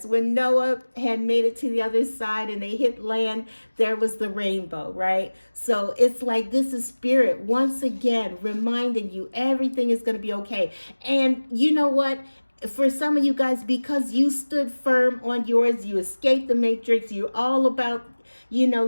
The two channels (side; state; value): both; inverted; correlation -1.00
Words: when Noah had made it to the other side and they hit land, there was the rainbow, right? So it's like this is Spirit once again reminding you everything is going to be okay. And you know what? For some of you guys, because you stood firm on yours, you escaped the matrix, you're all about